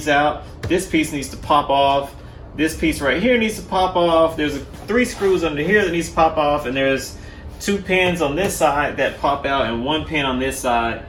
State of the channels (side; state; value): both; identical; correlation 1.00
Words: out. This piece needs to pop off. This piece right here needs to pop off. There's 3 screws under here that needs to pop off, and there's 2 pins on this side that pop out and 1 pin on this side.